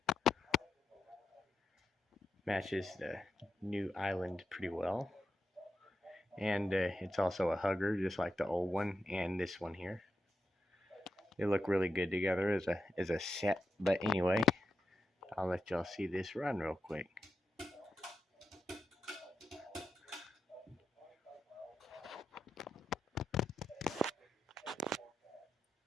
Matches the new island pretty well. And it's also a hugger, just like the old one and this one here. They look really good together as a set. But anyway, I'll let y'all see this run real quick.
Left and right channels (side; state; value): both; normal; correlation 0.87